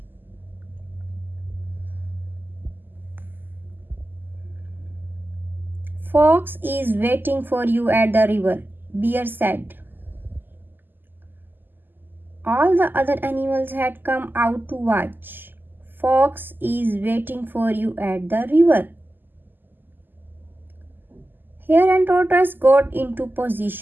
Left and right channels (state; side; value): late; left; 0.091 ms